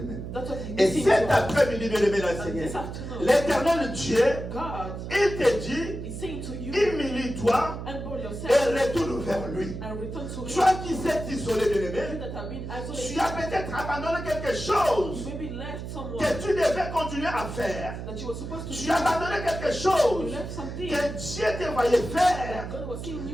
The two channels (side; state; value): right; noise; hum, 8 dB below the sound